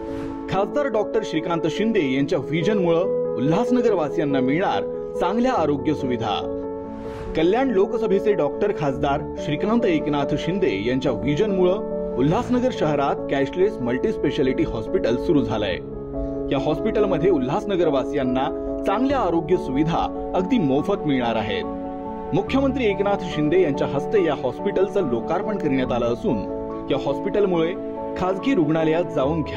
खासदार डॉक्टर श्रीकांत शिंदे यांच्या व्हिजनमुळे उल्हासनगर वासियांना मिळणार चांगल्या आरोग्य सुविधा। कल्याण लोकसभेचे डॉक्टर खासदार श्रीकांत एकनाथ शिंदे यांच्या व्हिजनमुळे उल्हासनगर शहरात कॅशलेस मल्टी स्पेशालिटी हॉस्पिटल सुरू झालंय। या हॉस्पिटलमध्ये उल्हासनगर वासियांना चांगल्या आरोग्य सुविधा अगदी मोफत मिळणार आहेत। मुख्यमंत्री एकनाथ शिंदे यांच्या हस्ते या हॉस्पिटलचं लोकार्पण करण्यात आलं असून या हॉस्पिटलमुळे खासगी रुग्णालयात जाऊन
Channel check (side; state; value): both; identical; correlation 1.00